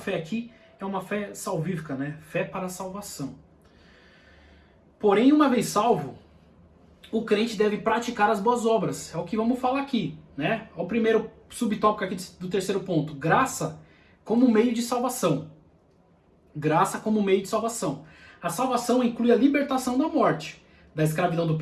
aqui é uma fé salvífica, né? Fé para a salvação. Porém, uma vez salvo, o crente deve praticar as boas obras. É o que vamos falar aqui, né? É o primeiro subtópico aqui do terceiro ponto. Graça como meio de salvação. Graça como meio de salvação. A salvação inclui a libertação da morte, da escravidão do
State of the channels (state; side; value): identical; both; correlation 1.00